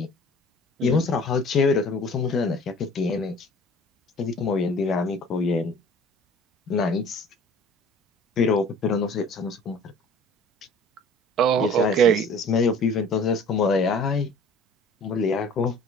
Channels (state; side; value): normal; both; correlation 0.47